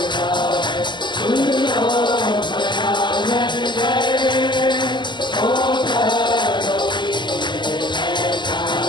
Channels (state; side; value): late; right; 0.22 ms